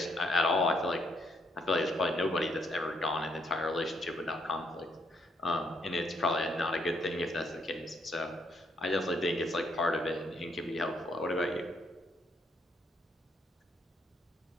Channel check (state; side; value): normal; both; correlation 0.72